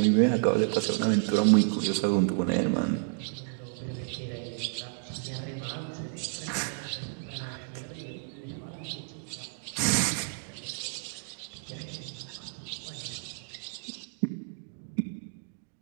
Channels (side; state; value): left; silent; digital silence